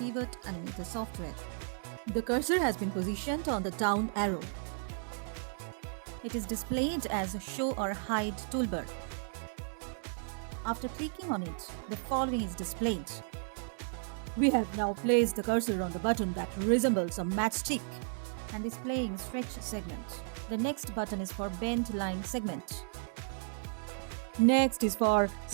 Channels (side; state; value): left; silent; digital silence